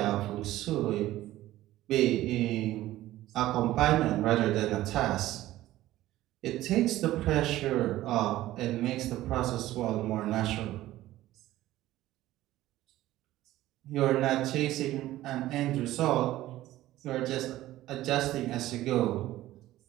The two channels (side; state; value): left; quieter; 15.3 dB